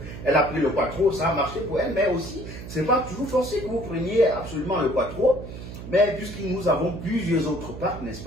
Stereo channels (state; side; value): noise; right; hum, 11 dB below the sound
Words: a pris le quattro, ça a marché pour elle, mais aussi, c'est pas toujours forcé que vous preniez absolument le quattro, mais puisque nous avons plusieurs autres parcs, n'est-ce